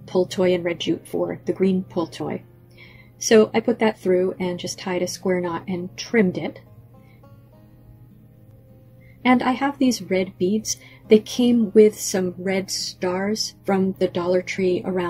pull toy and red jute for the green pull toy. So I put that through and just tied a square knot and trimmed it. And I have these red beads. They came with some red stars from the Dollar Tree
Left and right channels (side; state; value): both; identical; correlation 1.00